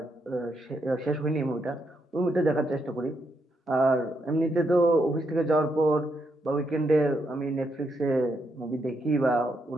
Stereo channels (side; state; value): both; normal; correlation 0.79